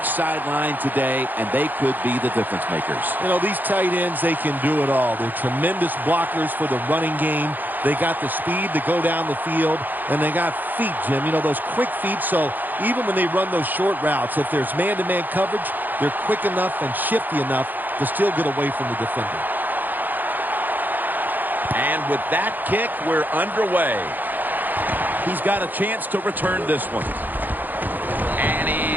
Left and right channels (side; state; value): left; late; 0.086 ms